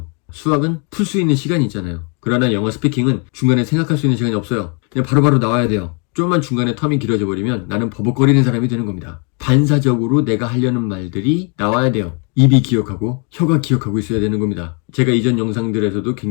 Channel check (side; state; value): right; quieter; 36.5 dB